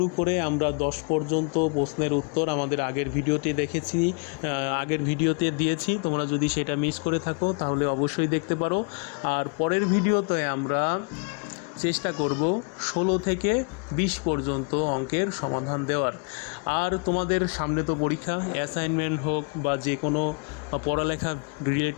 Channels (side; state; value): right; quieter; 38.0 dB